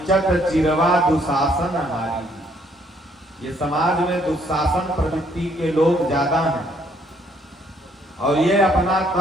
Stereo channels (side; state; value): both; normal; correlation 0.67